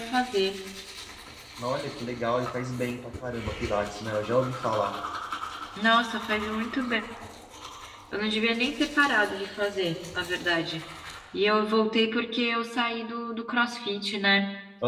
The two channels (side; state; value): both; identical; correlation 1.00